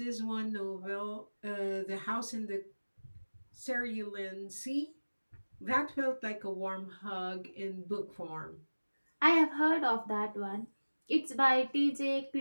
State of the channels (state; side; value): inverted; both; correlation -1.00